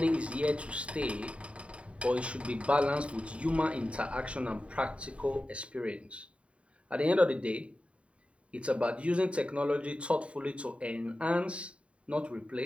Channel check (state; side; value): late; left; 0.061 ms